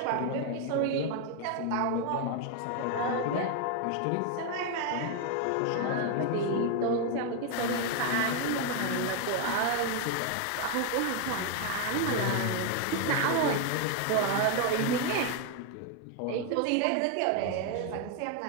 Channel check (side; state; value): both; different; correlation 0.01